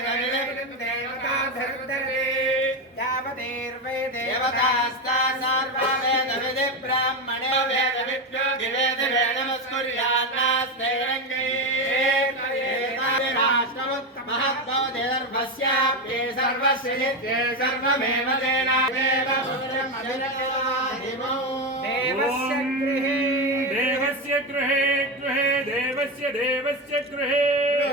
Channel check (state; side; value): normal; both; correlation 0.14